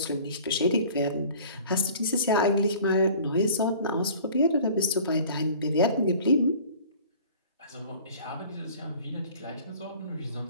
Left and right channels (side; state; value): both; inverted; correlation -0.47